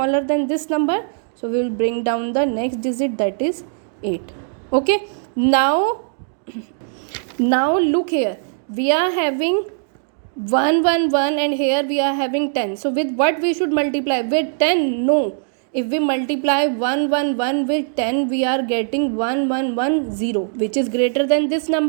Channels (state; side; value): silent; left; digital silence